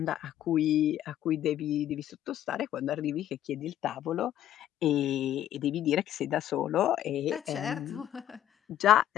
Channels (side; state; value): right; quieter; 11.9 dB